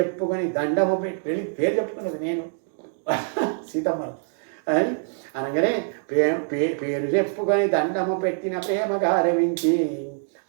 దండము పెట్టి వెళ్ళి పేరు చెప్పుకున్నది నేను సీతమ్మ అని అనగానే పేరు చెప్పుకొని దండము పెట్టిన ప్రేమగా రవించి.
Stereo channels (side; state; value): left; silent; digital silence